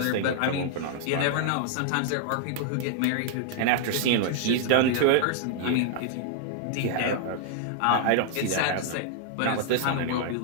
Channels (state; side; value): different; both; correlation -0.01